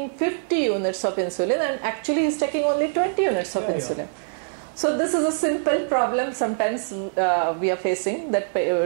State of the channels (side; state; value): left; silent; 63 dB below the other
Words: 50 units of insulin and actually he is taking only 20 units of insulin. So this is a simple problem sometimes we are facing, that